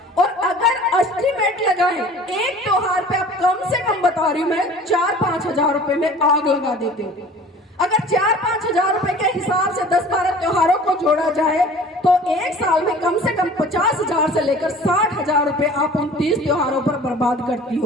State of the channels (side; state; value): both; normal; correlation 0.45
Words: और अगर एस्टिमेट लगाएं, एक त्योहार पे आप कम से कम बता रही हूं मैं 4-5 हजार रुपए में आग लगा देते हो। अगर 4-5 हजार रुपए के हिसाब से 10-12 त्योहारों को जोड़ा जाए तो एक साल में कम से कम 50 हजार से लेकर 60 हजार रुपए आप 29 त्योहारों पर बर्बाद करती